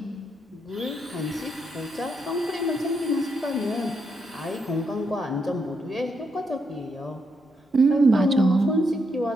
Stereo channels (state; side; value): normal; both; correlation 0.79